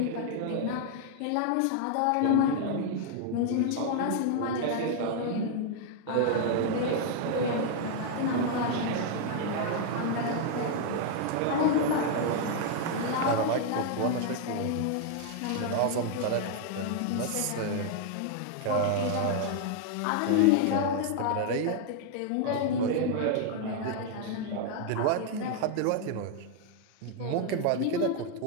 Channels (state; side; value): different; both; correlation 0.00